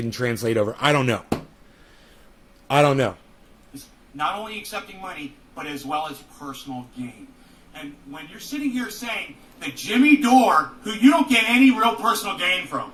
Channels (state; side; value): identical; both; correlation 1.00